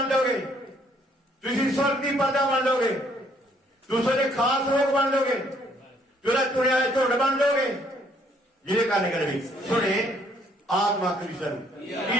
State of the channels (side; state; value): both; normal; correlation 0.66